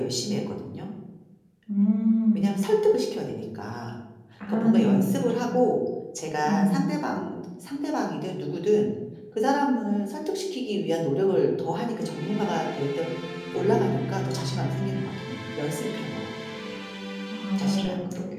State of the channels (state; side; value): identical; both; correlation 1.00